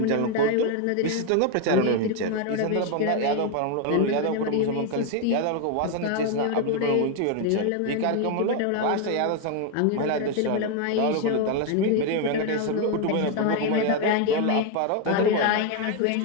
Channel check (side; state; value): both; different; correlation 0.01